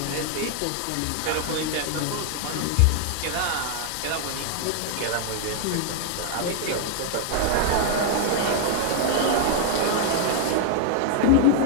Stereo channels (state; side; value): different; both; correlation 0.00